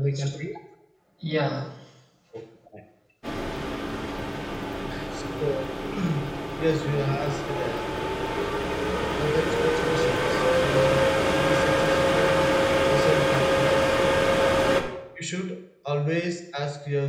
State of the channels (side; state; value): both; identical; correlation 1.00